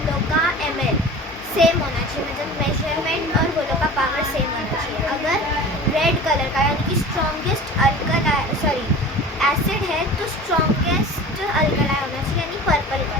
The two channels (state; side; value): normal; both; correlation 0.38